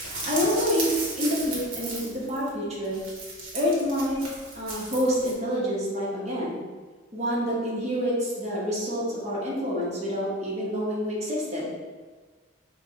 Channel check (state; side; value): normal; both; correlation 0.31